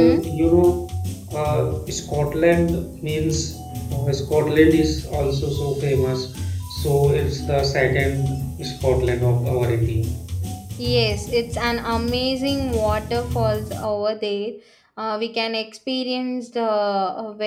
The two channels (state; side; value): identical; both; correlation 1.00